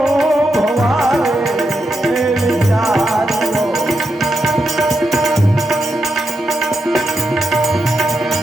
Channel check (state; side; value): normal; both; correlation 0.85